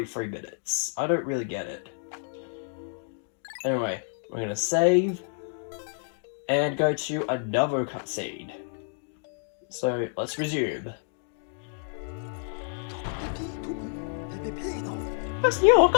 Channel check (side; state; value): right; silent; digital silence